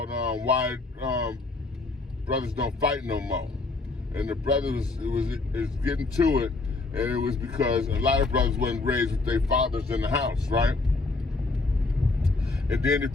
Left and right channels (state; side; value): quieter; right; 3.6 dB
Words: why brothers don't fight no more. And the brothers is getting to it, and it was because a lot of brothers wasn't raised with their fathers in the house, right? And then if